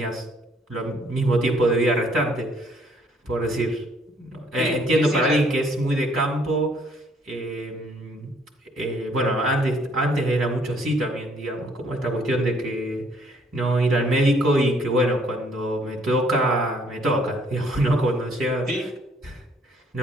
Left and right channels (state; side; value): normal; both; correlation 0.64